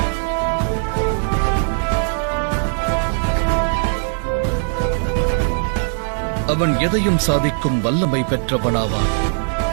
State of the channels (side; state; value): left; silent; digital silence